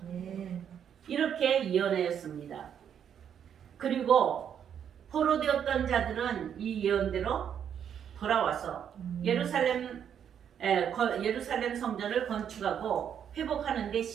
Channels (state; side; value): quieter; left; 8.6 dB